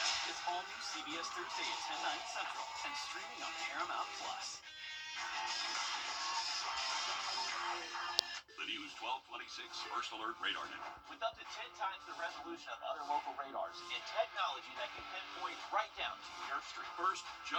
It's all new CBS Thursday at 10, 9 Central and streaming on Paramount Plus. The News 1226 First Alert Radar Net. With up to 10 times the resolution of other local radars and technology that can pinpoint right down to your street. First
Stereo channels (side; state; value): both; identical; correlation 1.00